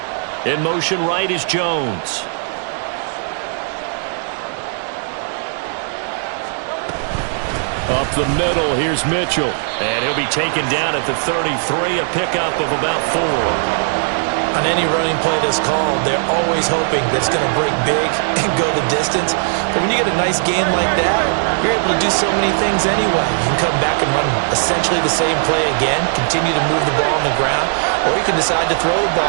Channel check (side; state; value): left; silent; digital silence